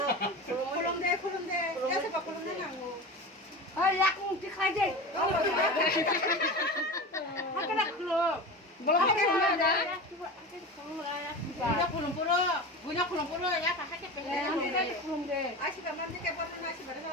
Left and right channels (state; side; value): normal; both; correlation 0.28